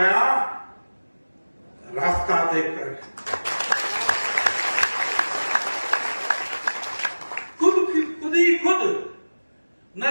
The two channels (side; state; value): both; inverted; correlation -1.00